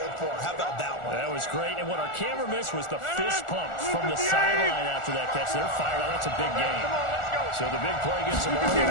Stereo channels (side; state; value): right; late; 1.4 ms